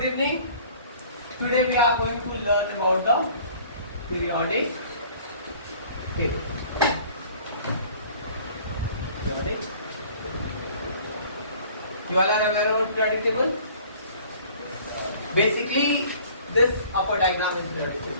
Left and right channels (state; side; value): inverted; both; correlation -0.50